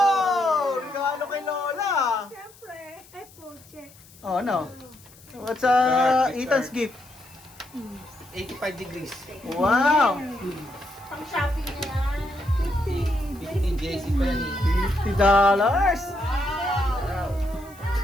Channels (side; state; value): left; noise; hiss, 24 dB below the sound